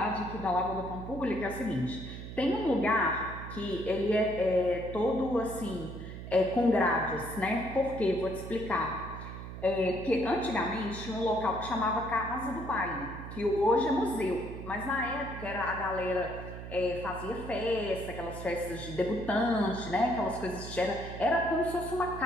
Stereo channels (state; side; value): noise; right; hum, 10 dB below the sound